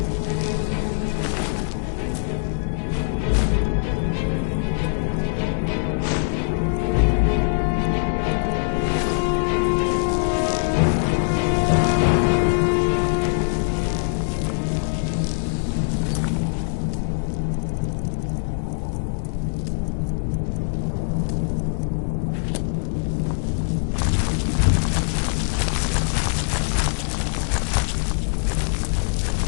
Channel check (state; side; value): silent; right; 64 dB below the other